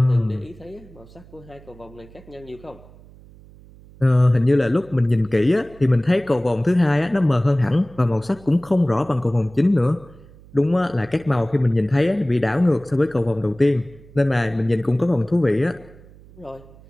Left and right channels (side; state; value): right; noise; hum, 23 dB below the sound